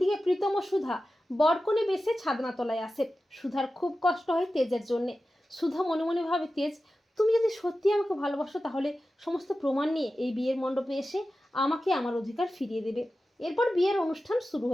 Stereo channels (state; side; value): normal; both; correlation 0.93